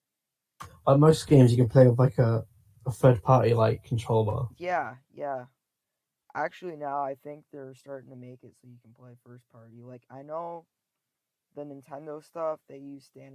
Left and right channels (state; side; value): identical; both; correlation 1.00